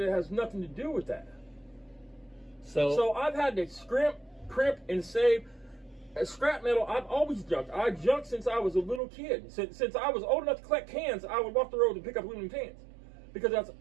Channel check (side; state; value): left; drops out; at 9.0 s